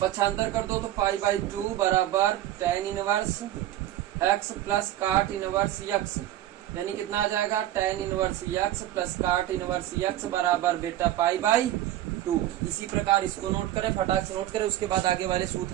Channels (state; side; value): quieter; left; 13.6 dB